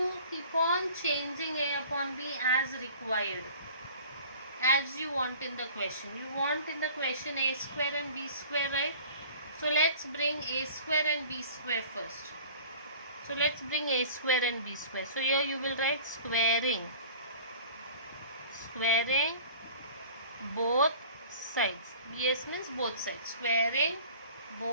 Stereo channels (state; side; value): inverted; both; correlation -0.45